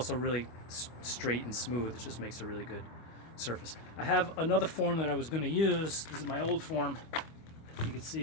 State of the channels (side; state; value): right; late; 25 ms